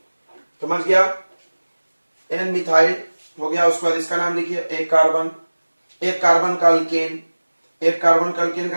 समझ गया? N मिथाइल हो गया। उसके बाद इसका नाम लिखिए, एक कार्बन, एक कार्बन का अल्केन, एक कार्बन का अल्केन का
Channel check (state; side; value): inverted; both; correlation -1.00